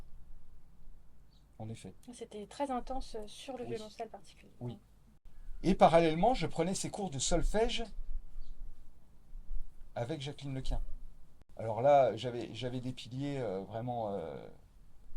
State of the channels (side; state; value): both; identical; correlation 1.00